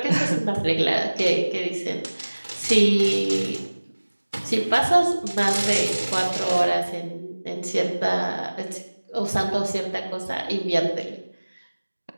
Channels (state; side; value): inverted; both; correlation -1.00